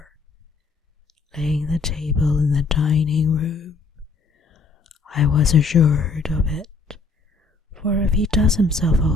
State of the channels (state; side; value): quieter; right; 4.2 dB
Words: laying the table in the dining room, I was assured of it, for if he does himself